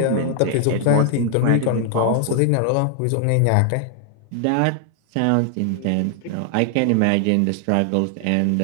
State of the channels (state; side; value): different; both; correlation 0.00